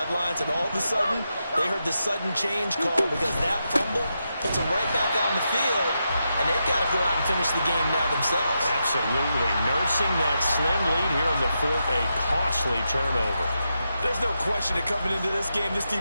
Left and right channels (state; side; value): inverted; both; correlation -0.86